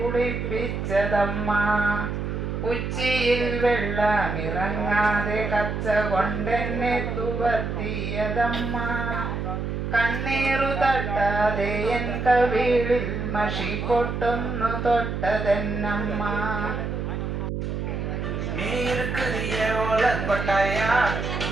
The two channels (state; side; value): noise; right; hum, 3 dB below the sound